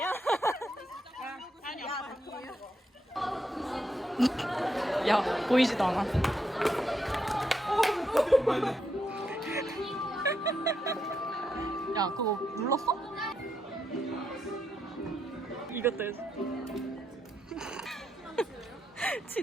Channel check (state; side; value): normal; both; correlation 0.80